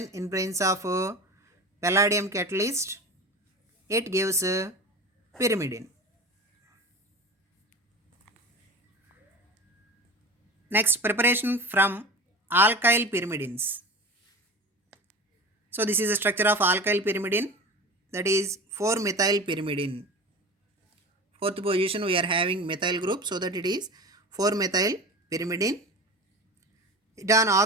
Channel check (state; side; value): normal; both; correlation 0.33